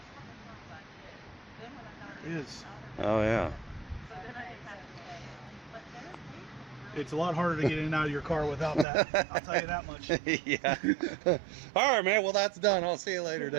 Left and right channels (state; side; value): drops out; left; at 8.8 s